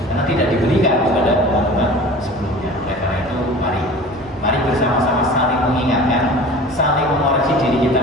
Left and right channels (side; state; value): both; normal; correlation 0.40